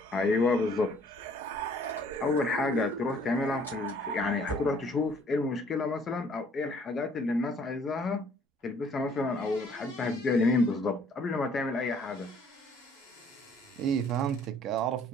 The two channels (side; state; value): both; normal; correlation 0.59